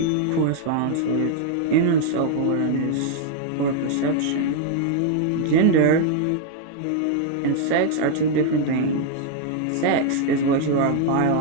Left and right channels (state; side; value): different; both; correlation 0.00